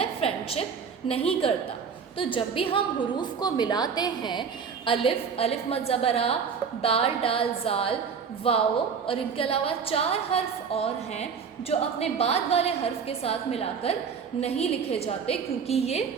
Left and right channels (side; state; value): left; quieter; 6.3 dB